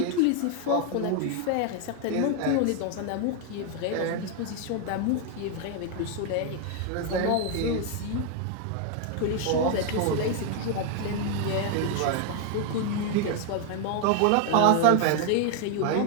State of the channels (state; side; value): different; both; correlation 0.00